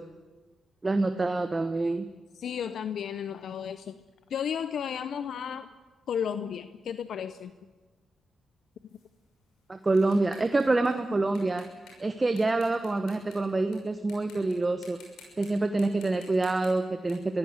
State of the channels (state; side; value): normal; both; correlation 0.93